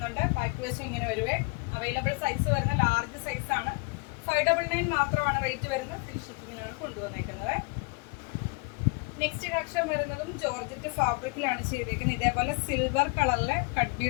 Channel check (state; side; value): quieter; right; 30.7 dB